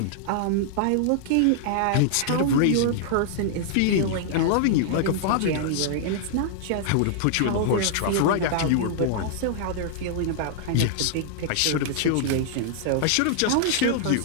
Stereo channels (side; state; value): both; different; correlation -0.01